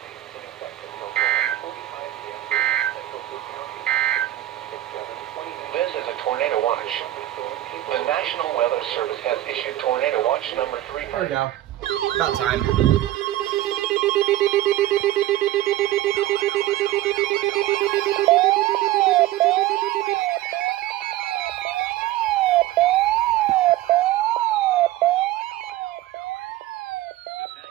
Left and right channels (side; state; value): left; quieter; 14.7 dB